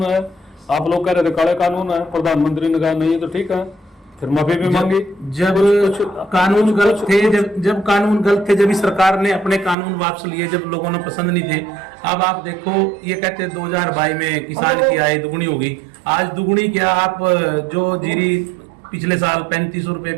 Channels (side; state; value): left; drops out; at 9.8 s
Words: है, आप लोग कह रहे थे काले कानून है, प्रधानमंत्री ने कहा नहीं तो ठीक है, फिर माफी भी मांगी। जब कानून गलत थे, जब कानून गलत थे, जब इस सरकार ने अपने कानून वापस लिए, जब लोगों ने पसंद नहीं थे। अब आप देखो, ये कहते 2022 में किसान की आय दुगनी होगी। आज दुगनी क्या, आप जो जीरी पिछले साल 3500 रुपए